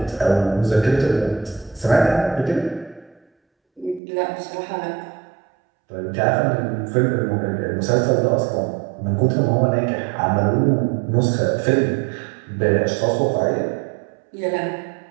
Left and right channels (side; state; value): left; drops out; at 4.0 s